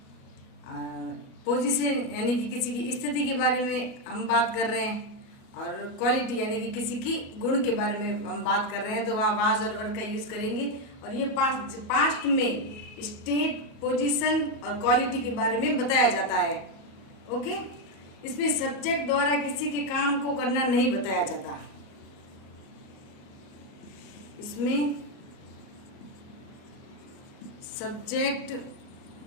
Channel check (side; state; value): right; late; 37 ms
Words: पोजीशन यानी कि किसी की स्थिति के बारे में हम बात कर रहे हैं। और क्वालिटी यानी कि किसी की गुण के बारे में हम बात कर रहे हैं, तो वहाँ वाज और वर का यूज करेंगे। और ये पास्ट में स्टेट, पोजीशन और क्वालिटी के बारे में बताया जाता है। ओके, इसमें सब्जेक्ट द्वारा किसी के काम को करना नहीं बताया जाता। इसमें सब्जेक्ट